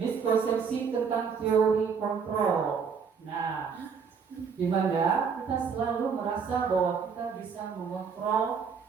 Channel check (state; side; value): quieter; left; 6.1 dB